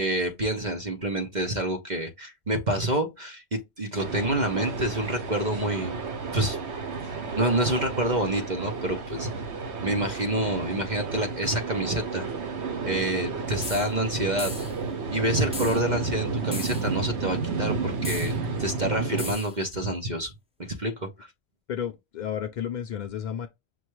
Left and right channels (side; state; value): both; normal; correlation -0.07